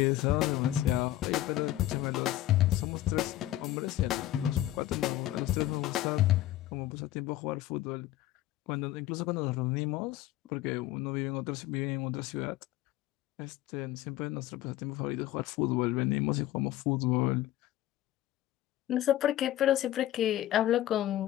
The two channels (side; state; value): right; quieter; 14.2 dB